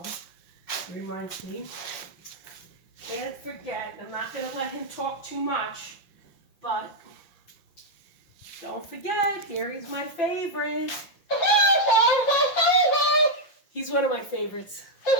It reminds me. Can't forget, I'm not going to let him talk too much, but don't forget, Gary's my favorite. He's one of my favorites.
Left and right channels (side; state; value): right; late; 5.8 ms